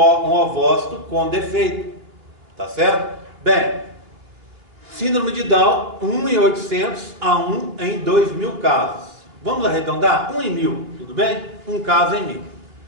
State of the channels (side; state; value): left; late; 2.9 ms